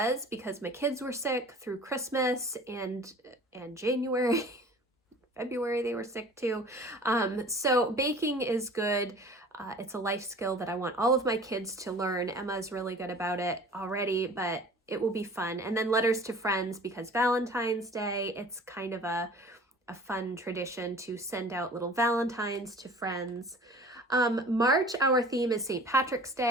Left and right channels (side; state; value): both; normal; correlation 0.45